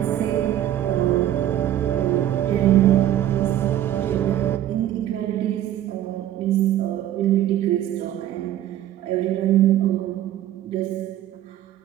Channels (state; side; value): quieter; left; 12.2 dB